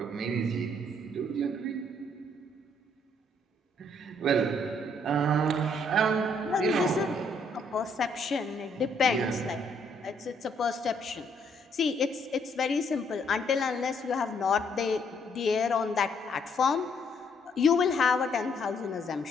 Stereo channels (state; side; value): normal; both; correlation 0.69